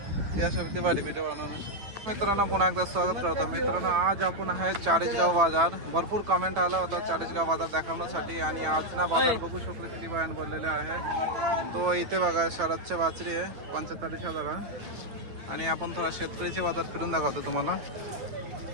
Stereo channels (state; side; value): late; left; 9.0 ms